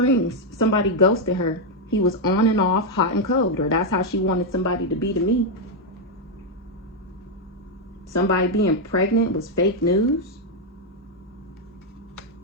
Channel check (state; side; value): normal; both; correlation 0.02